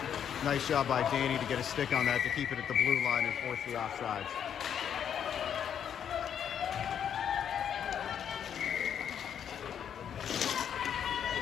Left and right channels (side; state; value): right; quieter; 8.7 dB